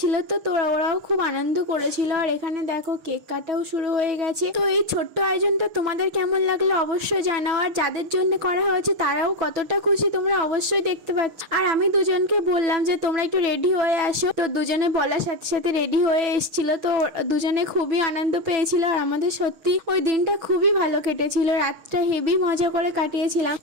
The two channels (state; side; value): late; left; 6.5 ms